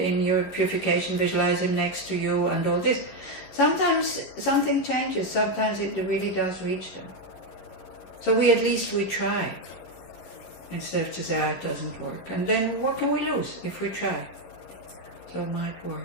your purification visualize him next to you and all this. Sometimes something changes, sometimes it really does reach them. So at least we try, instead of just say, it doesn't work. And then what can we lose if we try? So it might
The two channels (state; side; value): late; right; 11 ms